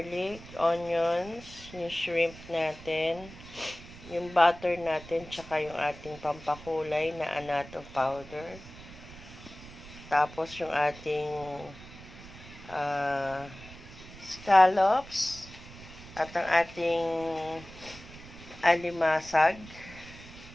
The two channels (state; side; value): noise; right; rumble, 17 dB below the sound